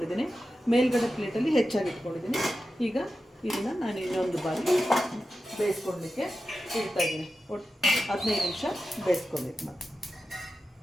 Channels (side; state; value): both; normal; correlation 0.91